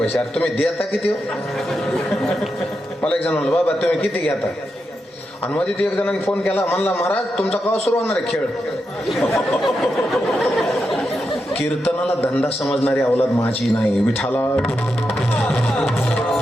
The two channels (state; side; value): normal; both; correlation 0.86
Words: अरे तुम्ही देता किती हो? मला एक जण म्हणलं बाबा तुम्ही किती घेता, आणि मध्ये एक जणांनी फोन केला, म्हणला महाराज तुमचा केव्हा सुरू होणार आहे खेळ. कीर्तनाला धंदा समजणारी अवलाद माझी नाही, विठाला